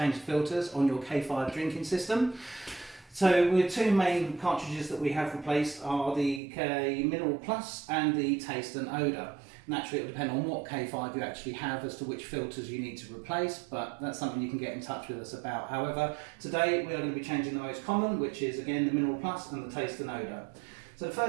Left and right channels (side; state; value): left; drops out; at 6.4 s